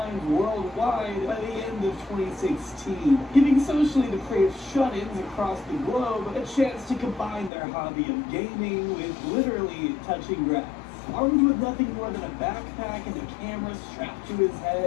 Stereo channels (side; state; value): right; drops out; at 7.5 s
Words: worldwide by the end of 2016, giving socially depraved shut-ins across the globe a chance to combine their hobby of gaming with literally touching grass. Armed with nothing more than a backpack and a camera strapped to his